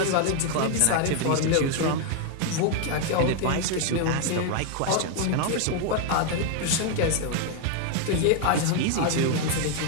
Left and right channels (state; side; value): different; both; correlation 0.01